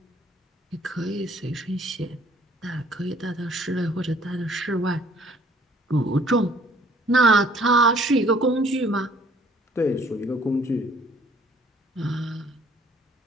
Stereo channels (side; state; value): both; normal; correlation 0.59